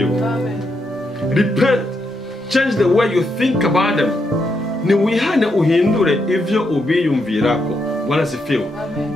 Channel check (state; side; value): normal; both; correlation 0.81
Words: Amen. Repent. Change the way you think about them. Ni wihane uhindure ivyo ubiyumvirako. Bwana sifiwe.